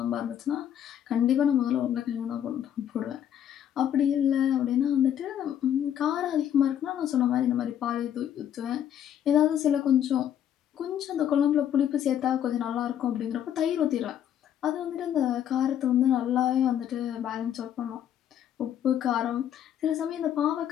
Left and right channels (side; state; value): right; quieter; 10.1 dB